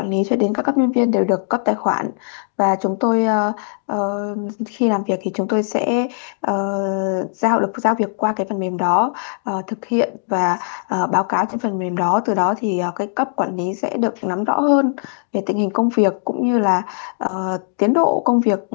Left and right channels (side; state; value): right; silent; digital silence